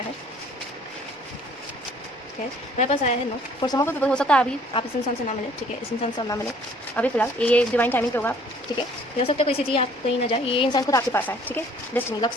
है, ठीक है. मेरे पास आया है no. For some of people हो सकता है अभी आप इस इंसान से ना मिले, ठीक है. इस इंसान से ना मिले अभी फिलहाल, ये डिवाइन टाइमिंग पे होगा, ठीक है. ये हो सकता है कोई सिटी आप कहीं ना जाए, ये इंसान खुद आपके पास आए, ठीक है. डेस्टिनी लक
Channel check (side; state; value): both; normal; correlation 0.57